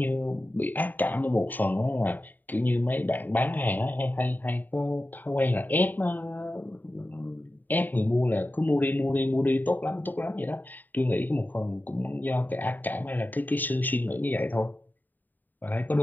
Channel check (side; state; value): right; late; 0.088 ms